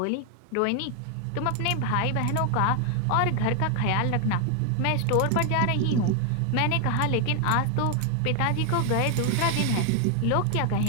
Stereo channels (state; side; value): different; both; correlation 0.00